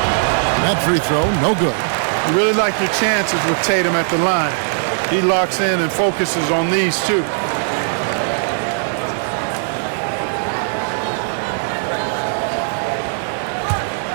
That free throw, no good. You really like your chances with Tatum at the line. He locks in and focuses on these two.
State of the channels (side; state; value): left; silent; digital silence